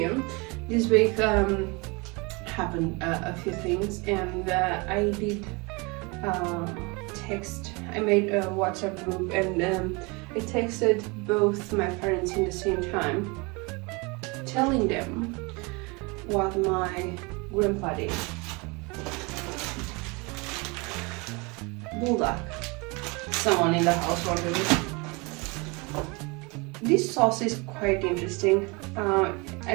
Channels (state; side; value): quieter; left; 28.0 dB